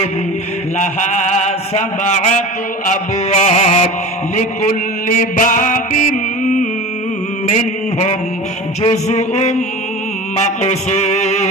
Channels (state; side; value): normal; both; correlation 0.34